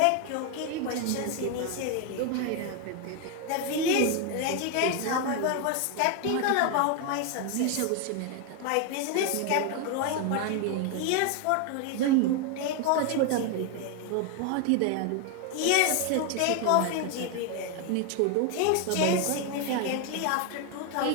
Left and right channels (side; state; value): both; different; correlation 0.01